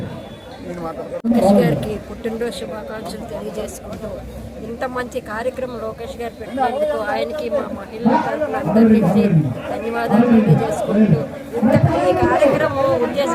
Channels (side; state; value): both; identical; correlation 1.00